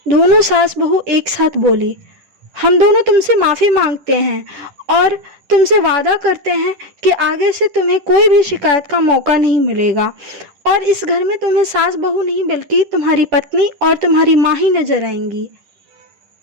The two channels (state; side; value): late; left; 10 ms